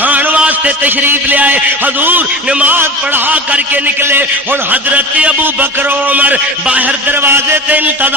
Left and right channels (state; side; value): normal; both; correlation 0.33